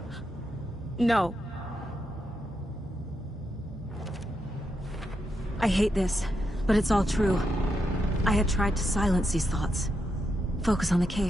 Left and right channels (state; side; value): normal; both; correlation 0.83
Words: No. I hate this, but it's all true. I had tried to silence these thoughts. Focus on the